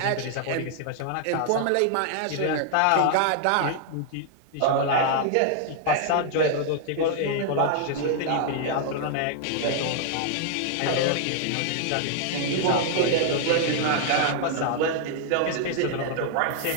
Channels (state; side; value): different; both; correlation 0.00